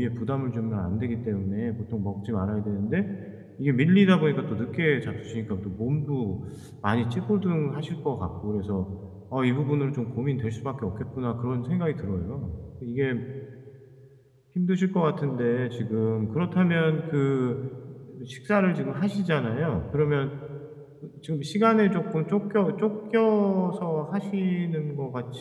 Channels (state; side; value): identical; both; correlation 1.00